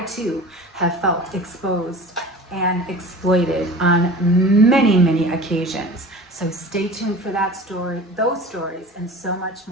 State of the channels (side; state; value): both; normal; correlation 0.38